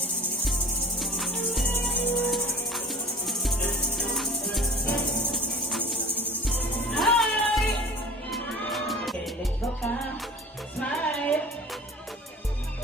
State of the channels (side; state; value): both; normal; correlation 0.42